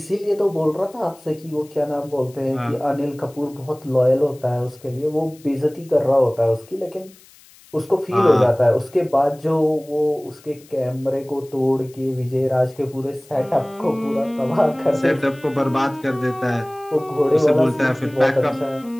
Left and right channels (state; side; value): noise; left; hiss, 26 dB below the sound